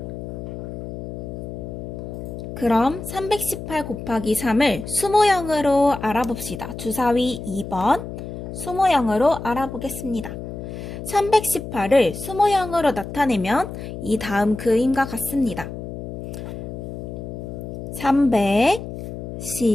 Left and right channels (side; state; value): left; noise; hum, 8 dB below the sound